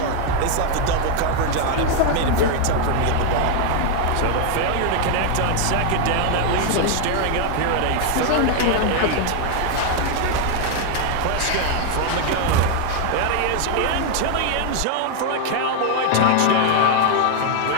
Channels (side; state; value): both; different; correlation 0.00